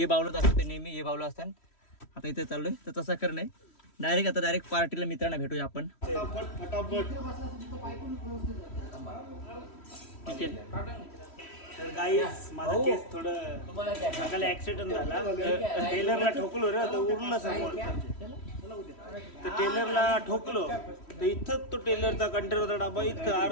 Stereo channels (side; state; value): right; late; 3.1 ms